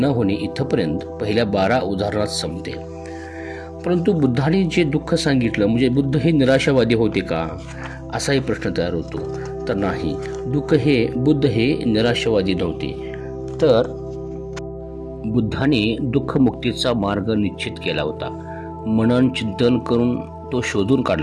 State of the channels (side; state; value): both; identical; correlation 1.00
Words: होणे इथपर्यंत पहिल्या 12 उदाहरणात संपते. परंतु बुद्धाने जे दुःख सांगितलं म्हणजे बुद्ध हे निराशावादी होते का असाही प्रश्न तयार होतो. तर नाही, बुद्ध हे निराशावादी नव्हते. तर बुद्धाने दुःखमुक्तीचा मार्ग निश्चित केला होता. मनन चिंतन करून तो शोधून